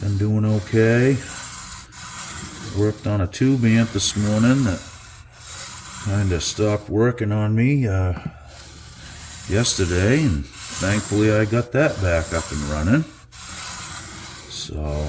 doing okay. Worked on a tube amp this morning that kind of stopped working on me yesterday, and thankfully I got that back up and running. So,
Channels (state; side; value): identical; both; correlation 1.00